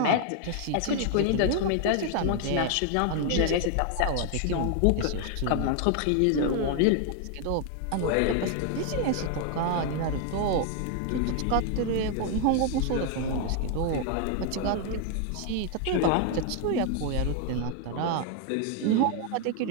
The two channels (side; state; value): both; different; correlation 0.00